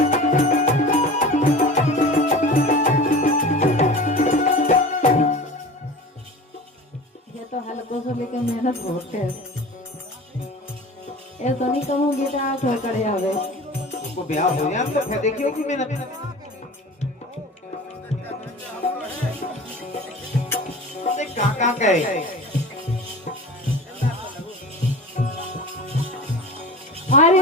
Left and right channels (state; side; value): normal; both; correlation 0.36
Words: हल्कों से लेके मेहनत बहुत है। ऐसा नहीं कहूँगी तो आप हो करे आवे उसको ब्याह हो जाए तो फिर देखियो कि मेहनत। काका कहे